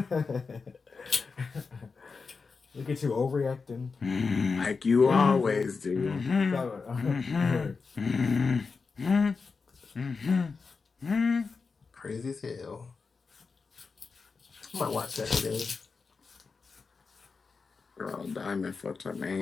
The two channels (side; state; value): right; quieter; 4.7 dB